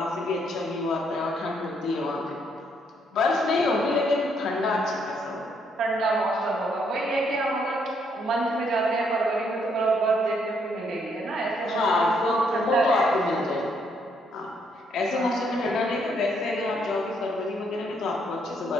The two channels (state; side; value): normal; both; correlation 0.72